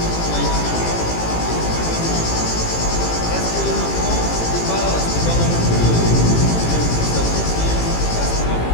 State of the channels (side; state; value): right; late; 18 ms